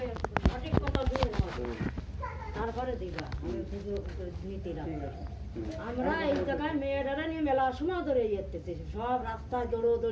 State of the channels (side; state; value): both; identical; correlation 1.00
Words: তারপরে দিবা আমি শুধু নিতে আমরা এই জায়গায় মেয়েরা নিয়ে মেলার সময় ধরে যেতেছি, সব রাস্তায়